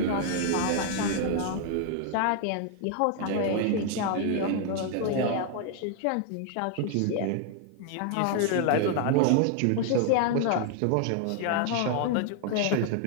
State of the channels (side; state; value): both; different; correlation 0.00